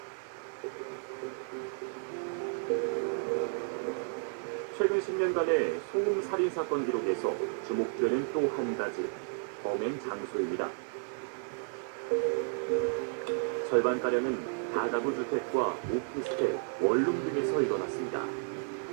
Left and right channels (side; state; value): left; silent; 56 dB below the other